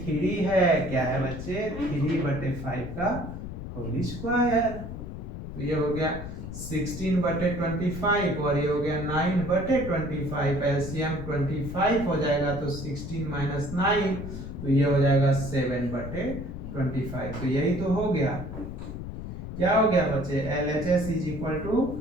3 है, क्या है बच्चे 3 बटे 5 का होल स्क्वायर, तो ये हो गया 16 बटे 25 और ये हो गया 9 बटे 25, एलसीएम 25 हो जाएगा, तो 16 माइनस 9, तो ये हो जाएगा 7 बटे 25, तो यही तो हो गया, क्या हो गया बच्चे, LHS is equal to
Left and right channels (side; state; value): left; noise; rumble, 8 dB below the sound